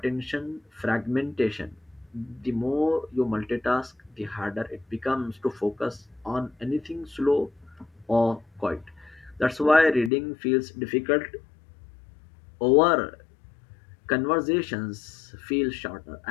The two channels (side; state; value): right; drops out; at 10.1 s